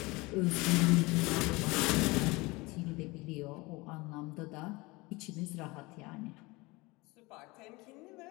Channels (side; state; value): right; quieter; 23.6 dB